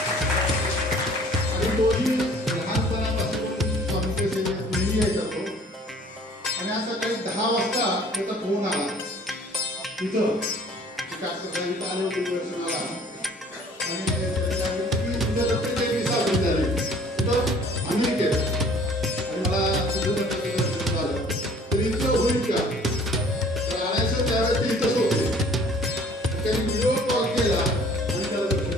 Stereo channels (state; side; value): normal; both; correlation 0.53